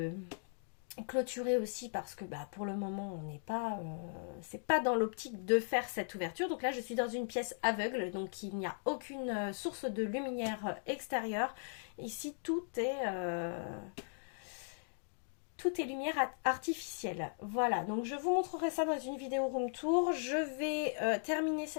clôturée aussi parce que pour le moment on n'est pas, c'est pas dans l'optique de faire cette ouverture. Donc là je suis dans une pièce aveugle, donc il n'y a aucune source de lumière extérieure. Ici tout est lumière artificielle. Voilà, donc je vous montrerai ça dans une vidéo room tour. Je vais terminer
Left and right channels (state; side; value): silent; right; digital silence